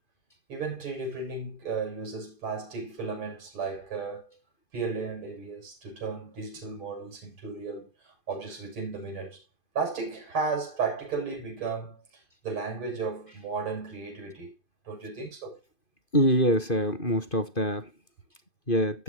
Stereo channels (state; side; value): late; right; 2.5 ms